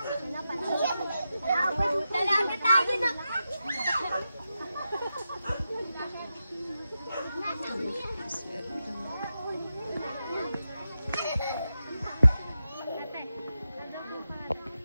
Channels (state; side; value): inverted; both; correlation -0.90